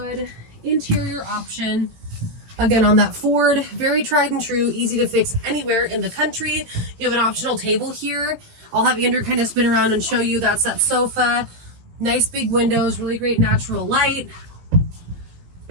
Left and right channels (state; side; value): late; left; 18 ms